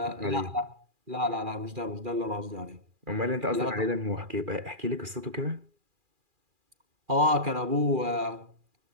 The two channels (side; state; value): left; late; 2.4 ms